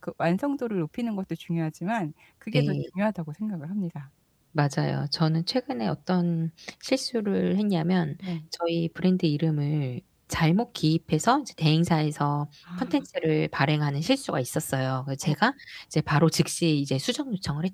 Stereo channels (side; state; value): both; identical; correlation 1.00